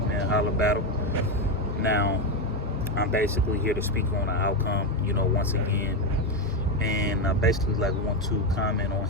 holla battle. Now I'm basically here to speak on the outcome, once again. And I basically like want to comment on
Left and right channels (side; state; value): both; normal; correlation 0.10